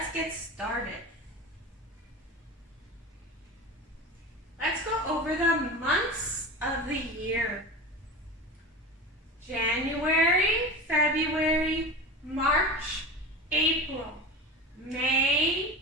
get started. Let's go over the months of the year. January, February, March, April, May,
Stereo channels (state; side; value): normal; both; correlation 0.29